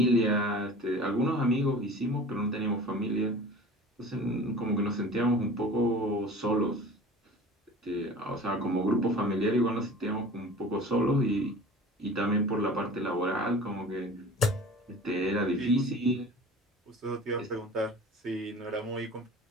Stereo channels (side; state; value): both; normal; correlation 0.41